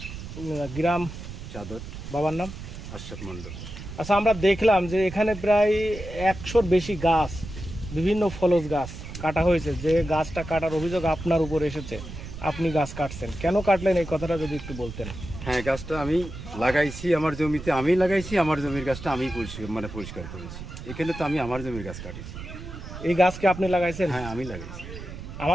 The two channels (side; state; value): right; noise; rumble, 11 dB below the sound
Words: গ্রাম চাদর। বাবার নাম আশরাফ মন্ডল। আচ্ছা, আমরা দেখলাম যে এখানে প্রায় 100-র বেশি গাছ, বিভিন্ন ফলজ গাছ কাটা হয়েছে। যে গাছটা কাটার অভিযোগ আপনার উপর এসেছে, আপনি গাছ কাটছেন, কেন কাটলেন এই কথাটা যদি একটু বলতেন। হ্যাঁ, গাছটা আমি লাগাইছি আমার জমিতে, আমি লাগাইছি। আমার জমির গাছটা আমি পরিষ্কার করেছি। এখানে তো আমি আমার জমির গাছ কাটিছি। এই গাছকে আপনি লাগাইছেন? হ্যাঁ, আমি লাগাইছি।